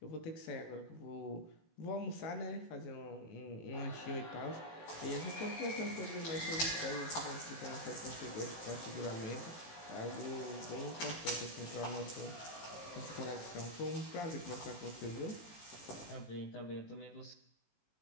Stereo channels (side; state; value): right; late; 18 ms